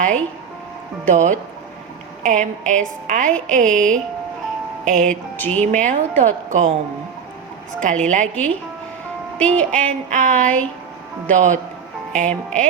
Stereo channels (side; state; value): left; quieter; 6.8 dB